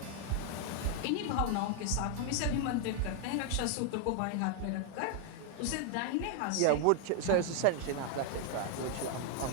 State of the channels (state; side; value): different; both; correlation 0.00